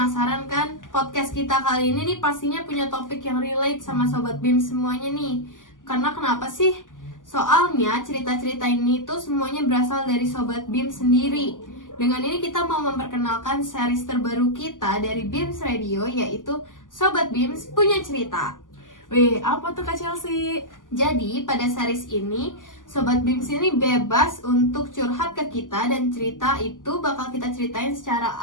kan? Podcast kita kali ini nih pastinya punya topik yang relate sama Sobat BIM semuanya nih. Karena kenapa sih? Soalnya cerita-cerita ini tuh semuanya berasal dari Sobat BIM sendiri. Dengan ini kita mau memperkenalkan series terbaru kita dari BIMS Radio, yaitu Sobat BIMS Punya Cerita. Wih, apa tuh Kak Chelsea? Jadi pada series ini Sobat BIMS ini bebas untuk curhat ke kita, dan cerita itu bakal kita ceritain secara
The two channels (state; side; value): late; right; 0.88 ms